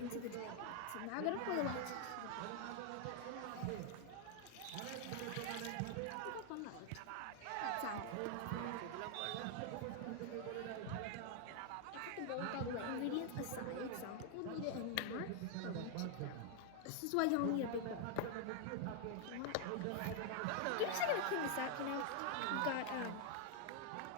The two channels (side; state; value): both; different; correlation 0.00